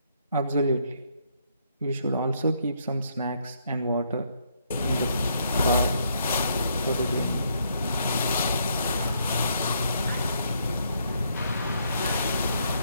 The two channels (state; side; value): inverted; both; correlation -0.72